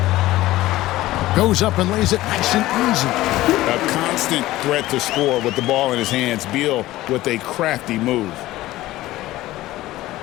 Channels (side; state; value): right; quieter; 16.6 dB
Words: Goes up and lays it nice and easy. A constant threat to score with the ball in his hands. Beal with a crafty move.